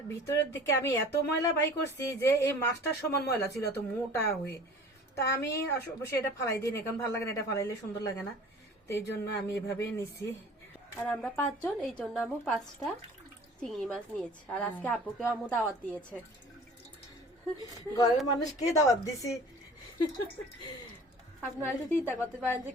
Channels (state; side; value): normal; both; correlation 0.45